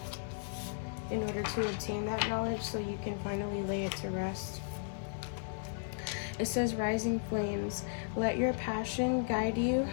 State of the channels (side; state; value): right; silent; 54 dB below the other